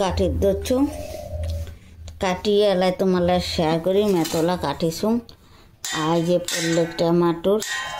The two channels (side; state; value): both; identical; correlation 1.00